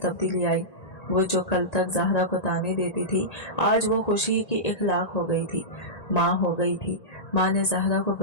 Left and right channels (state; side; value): late; right; 1.8 ms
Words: आई। वो जो कल तक जहरा को ताने देती थी, आज वो खुशी की इखलाक हो गई थी, माँ हो गई थी। माँ ने जहरा को